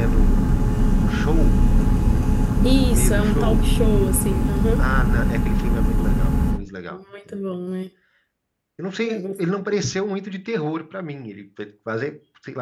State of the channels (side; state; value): both; identical; correlation 1.00